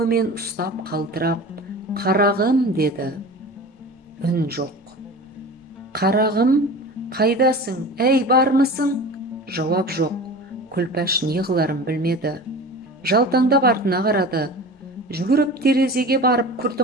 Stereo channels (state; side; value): normal; both; correlation 0.36